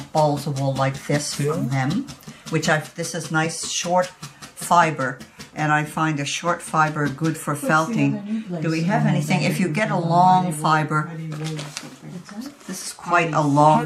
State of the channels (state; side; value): identical; both; correlation 1.00